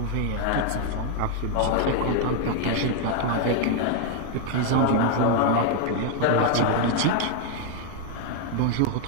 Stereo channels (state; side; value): different; both; correlation 0.00